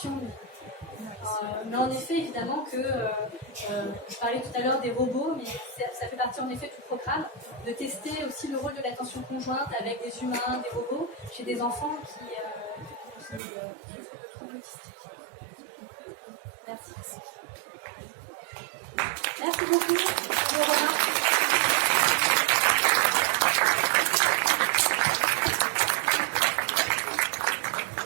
Mais en effet, évidemment que je parlais tout à l'heure des robots, mais ça fait partie en effet du programme de tester aussi le rôle de l'attention conjointe avec des humains, des robots, chez des enfants qui souffrent de troubles autistiques. Merci. Merci beaucoup.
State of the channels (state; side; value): drops out; left; at 13.4 s